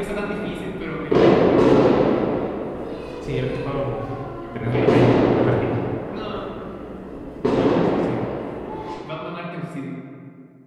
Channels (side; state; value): both; identical; correlation 1.00